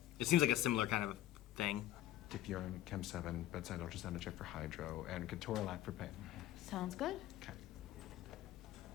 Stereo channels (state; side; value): quieter; right; 13.8 dB